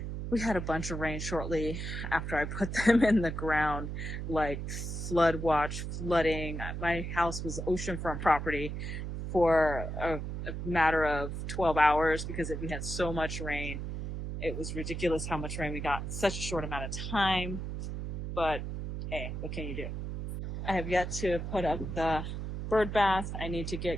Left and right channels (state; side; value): noise; right; hum, 5 dB below the sound